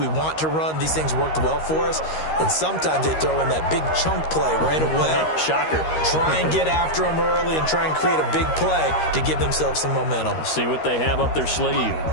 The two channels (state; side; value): late; right; 13 ms